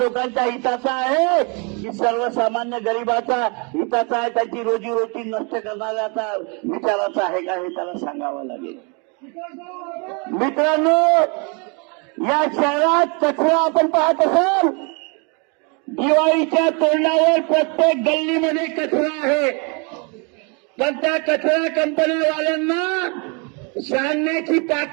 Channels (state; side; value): quieter; left; 33.5 dB